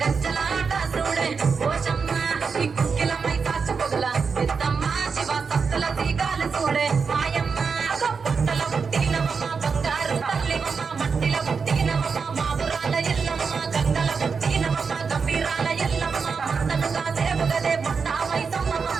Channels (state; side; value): quieter; left; 5.4 dB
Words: గజ్జలాట చూడే ఓషమ్మ ఈ కుక్కిలమై కాచు పొగల పెద్దమ్మ శివ సత్తుల తీగాలు చూడే మాయమ్మ పుట్టల పుట్టినమ్మ బంగారు తల్లివమ్మ మట్టిల పుట్టినమ్మ మాబురాల ఎల్లమ్మ గంగల పుట్టినమ్మ గంభీరాల ఎల్లమ్మ మందనుగా దేవుగదే మొండామై సమ్మమ్మ